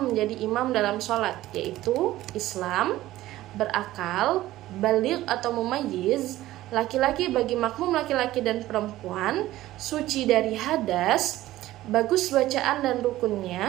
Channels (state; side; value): quieter; left; 15.6 dB